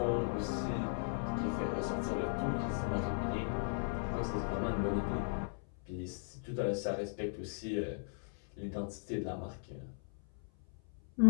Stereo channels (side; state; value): right; silent; 53 dB below the other